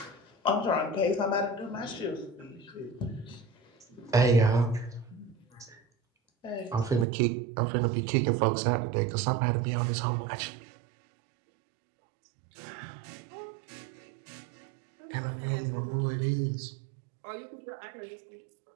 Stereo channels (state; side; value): drops out; left; at 7.1 s